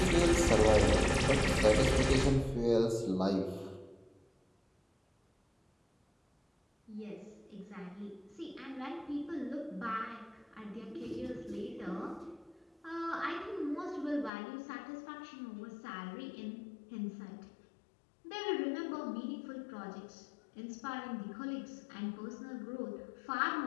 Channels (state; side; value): drops out; right; at 14.3 s